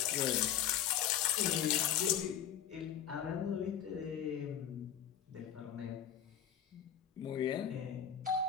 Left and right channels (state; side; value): quieter; right; 9.6 dB